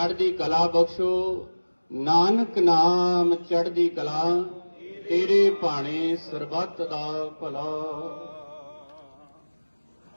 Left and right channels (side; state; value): both; inverted; correlation -1.00